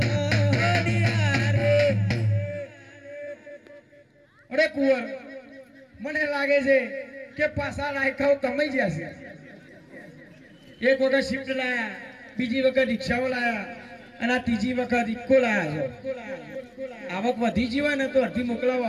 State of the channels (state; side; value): identical; both; correlation 1.00